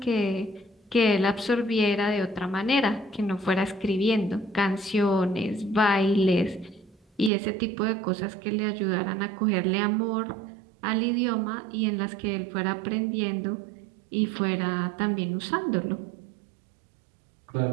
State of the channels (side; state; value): left; drops out; at 7.3 s